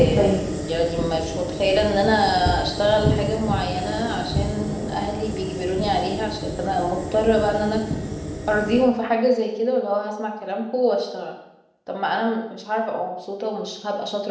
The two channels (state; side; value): identical; both; correlation 1.00